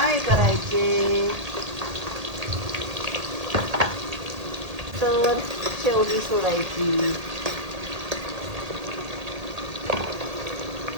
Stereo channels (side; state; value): left; late; 1.8 ms